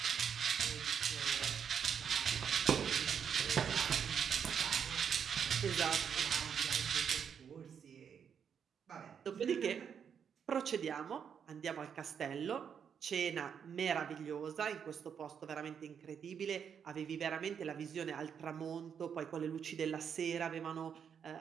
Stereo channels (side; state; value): left; quieter; 7.5 dB